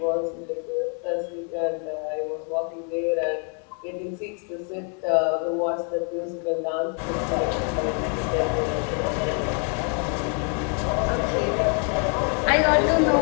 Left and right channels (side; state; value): right; quieter; 39.6 dB